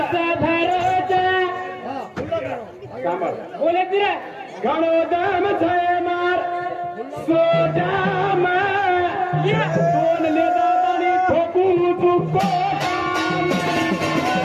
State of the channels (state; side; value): identical; both; correlation 1.00